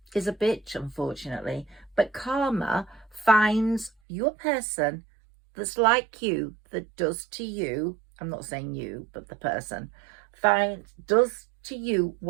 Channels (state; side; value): drops out; left; at 3.9 s